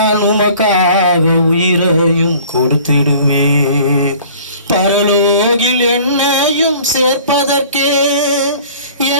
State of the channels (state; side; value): inverted; both; correlation -0.49